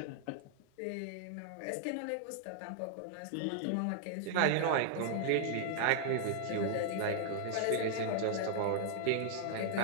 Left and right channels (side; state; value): both; different; correlation -0.01